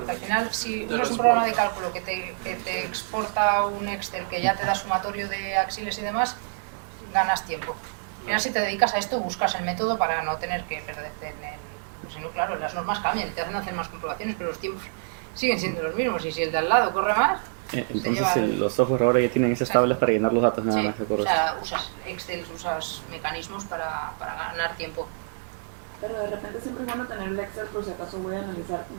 al final si uno es un programa de cálculo que te exporta un Excel que ya te da sumatorio de axiles y demás, ganas tiempo. Al final si te dedicas a esto buscas el método para no tener que perderte si no, claro, las normas cambian, te hacen hacer más comprobaciones, pero los tiempos siguen siendo los mismos y si el de al lado corre más... Entonces los software ahora ya tienen esas tablas para llenar los datos nada más, de acuerdo. O sea, usas Excel, usas mecanismos para ganar tiempo. Pero de repente siempre es bueno tener el Excel por si acaso voy a analizar un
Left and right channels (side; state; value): left; silent; digital silence